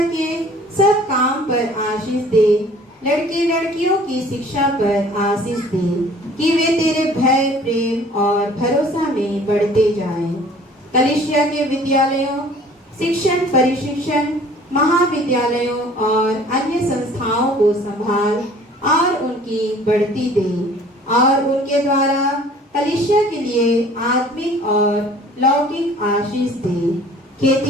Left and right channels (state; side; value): normal; both; correlation 0.51